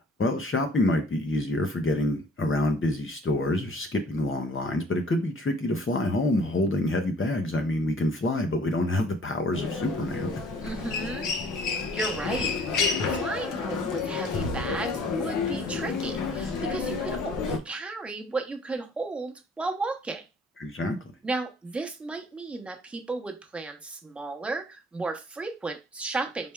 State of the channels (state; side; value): normal; both; correlation 0.55